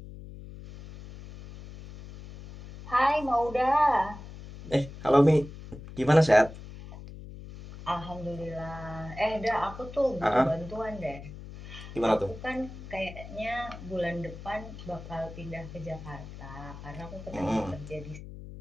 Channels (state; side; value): noise; left; hum, 13 dB below the sound